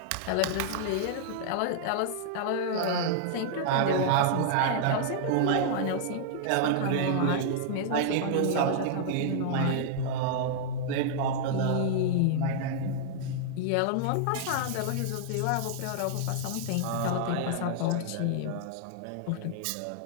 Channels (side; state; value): both; different; correlation -0.01